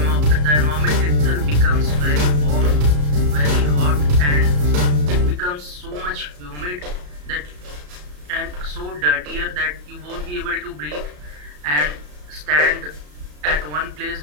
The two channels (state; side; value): late; left; 34 ms